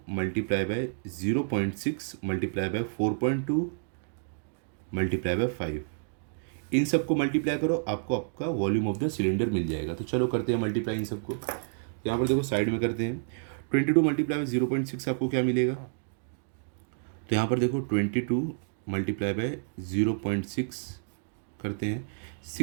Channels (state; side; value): silent; left; digital silence